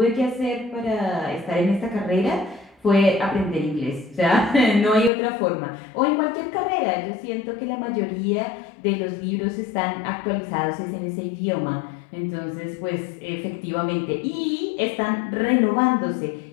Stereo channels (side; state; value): right; drops out; at 5.1 s